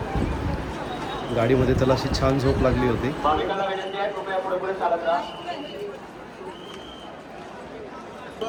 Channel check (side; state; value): both; identical; correlation 1.00